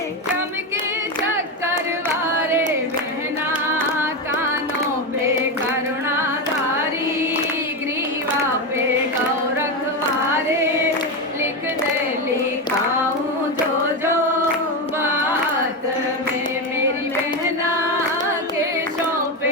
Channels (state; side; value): normal; both; correlation 0.13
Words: चमके चक्कर वारे बहना कानों पे करुणाधारी ग्रीवा पे गौरख वारे लिख दे लिखाऊं जो जो बात में मेरी बहना के